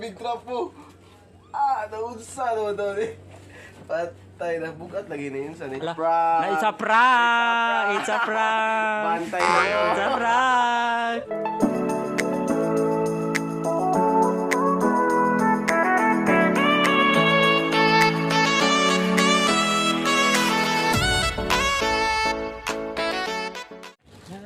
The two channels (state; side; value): identical; both; correlation 1.00